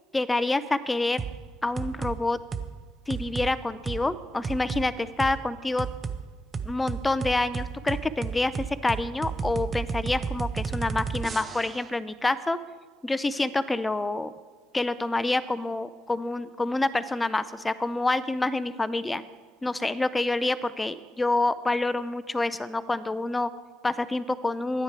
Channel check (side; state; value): both; normal; correlation 0.93